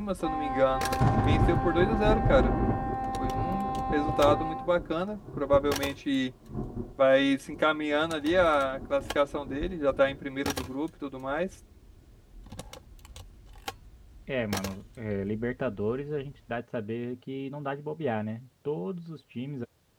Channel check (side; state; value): both; identical; correlation 1.00